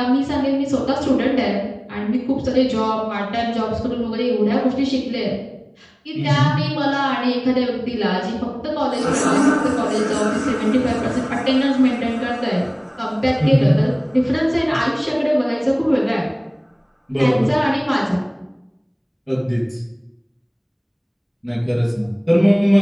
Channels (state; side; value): identical; both; correlation 1.00